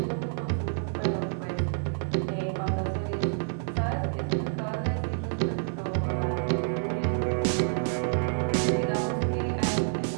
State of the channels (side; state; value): left; silent; digital silence